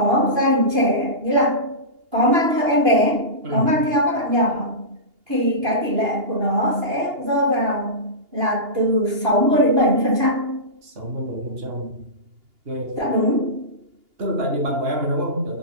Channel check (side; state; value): left; late; 2.8 ms